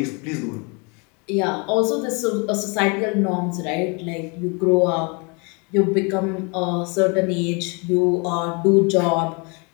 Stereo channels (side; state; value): right; quieter; 32.0 dB